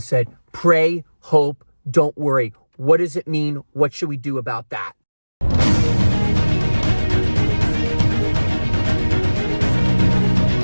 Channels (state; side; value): inverted; both; correlation -1.00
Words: pray, hope, don't worry. What does it mean? What should we do about that?